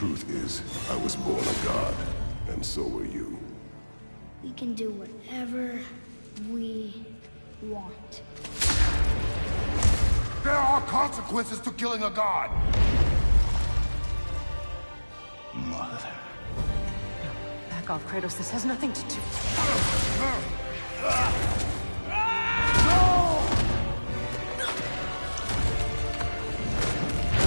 is, I was born a god, and so were you. We can do whatever we want. There are consequences to killing a god! Mother. Back off, Kratos. This has nothing to do...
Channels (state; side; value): inverted; both; correlation -1.00